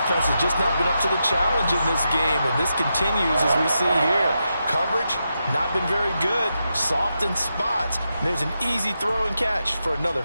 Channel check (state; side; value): inverted; both; correlation -0.86